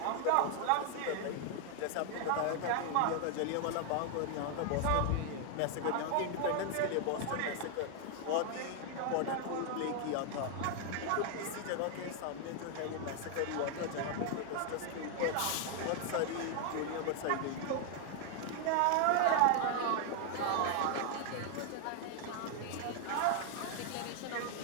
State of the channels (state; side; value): different; both; correlation 0.00